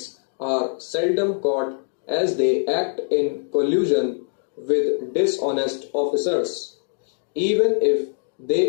are seldom caught as they act in collusion with dishonest officers. Even if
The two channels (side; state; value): right; silent; 63 dB below the other